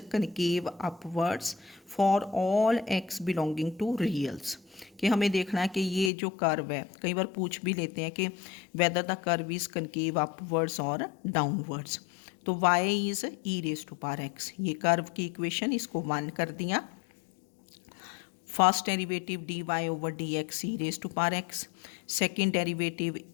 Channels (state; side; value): drops out; right; at 6.1 s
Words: concave upwards for all x belonging to reals. कि हमें देखना है कि ये जो कर्व है, कई बार पूछ भी लेते हैं कि whether the curve is concave upwards और डाउनवर्ड्स। तो y is e raise to power x, ये कर्व की इक्वेशन, इसको 1 कर दिया। First derivative dy over dx e raise to power x, second derivative